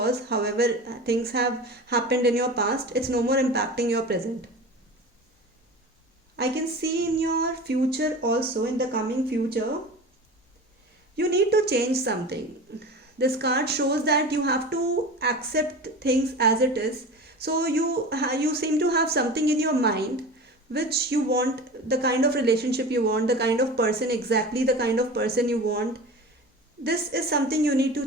however things have happened in your past, it's no more impacting your present. I can see in your future also, in the coming future, you need to change something. This card shows that you have to accept things as it is. So you seem to have something in your mind which you want, the kind of relationship you want, the kind of person, exactly the kind of person you want. This is something you need to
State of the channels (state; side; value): normal; both; correlation 0.33